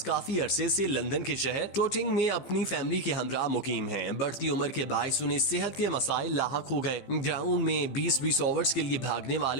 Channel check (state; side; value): late; right; 15 ms